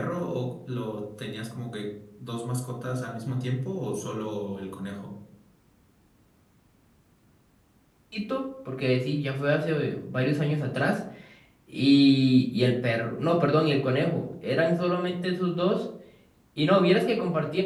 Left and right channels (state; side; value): identical; both; correlation 1.00